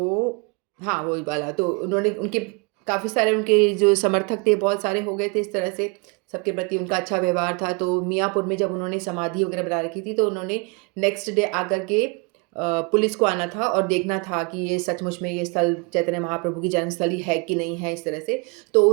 हाँ वो वाला, तो उन्होंने उनके काफ़ी सारे उनके जो समर्थक थे बहुत सारे हो गए थे, इस तरह से सबके प्रति उनका अच्छा व्यवहार था। तो मियाँपुर में जब उन्होंने समाधि वगैरह बना रखी थी, तो उन्होंने नेक्स्ट डे आकर के पुलिस को आना था और देखना था कि ये सचमुच में ये स्थल चैतन्य महाप्रभु की जन्मस्थली है कि नहीं है, इस तरह से। तो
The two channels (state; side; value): quieter; left; 31.3 dB